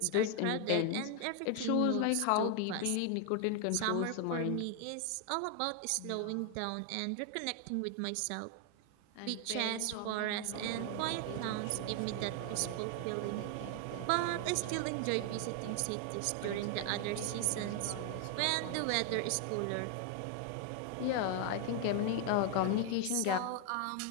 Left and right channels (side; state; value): both; different; correlation 0.00